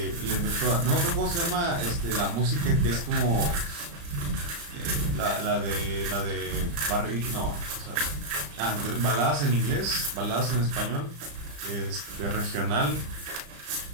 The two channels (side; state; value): left; late; 35 ms